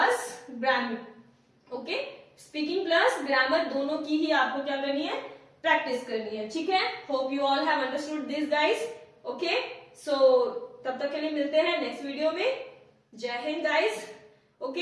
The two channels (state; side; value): identical; both; correlation 1.00